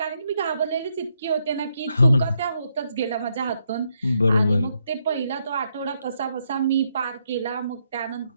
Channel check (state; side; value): inverted; both; correlation -0.77